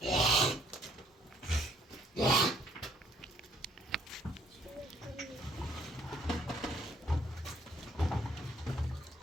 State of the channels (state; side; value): normal; both; correlation 0.64